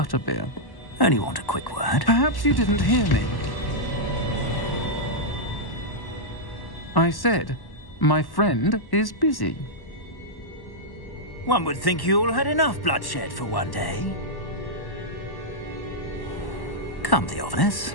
Only want a quick word. Perhaps you didn't hear me. I said, my friend is busy. One would think you all had enough bloodshed for one day. Come, Theophilus.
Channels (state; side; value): late; right; 1.1 ms